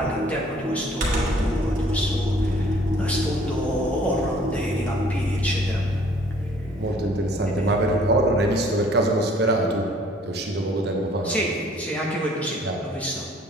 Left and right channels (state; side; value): normal; both; correlation 0.57